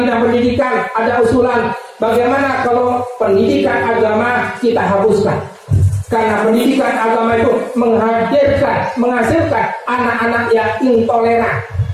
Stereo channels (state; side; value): identical; both; correlation 1.00